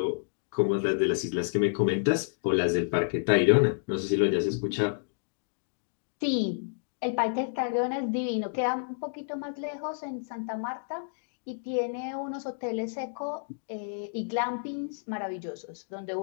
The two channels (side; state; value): right; silent; digital silence